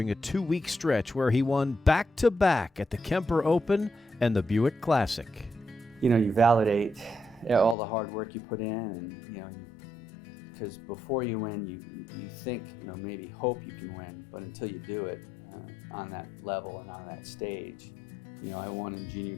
a 2-week stretch where he won back-to-back at the Kemper Open and the Buick Classic. You validate all the hard work you put in, and because before you win, you think, maybe hope you can win, but until you do it on that level and on that stage, I won in junior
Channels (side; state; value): right; drops out; at 7.8 s